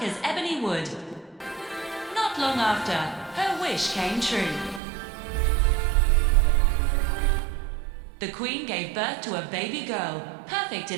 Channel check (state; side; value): drops out; left; at 4.8 s